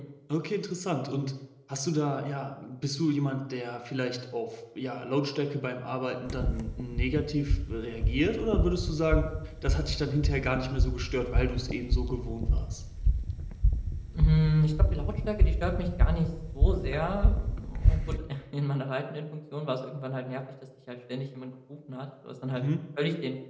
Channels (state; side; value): identical; both; correlation 1.00